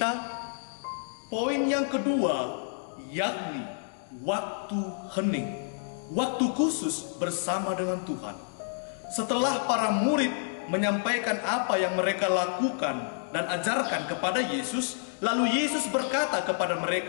Poin yang kedua yakni waktu hening, waktu khusus bersama dengan Tuhan. Setelah para murid menyampaikan apa yang mereka lakukan dan ajarkan kepada Yesus, lalu Yesus berkata kepada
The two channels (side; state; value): right; silent; digital silence